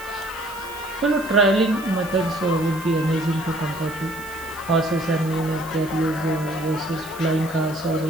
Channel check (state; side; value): noise; right; hiss, 18 dB below the sound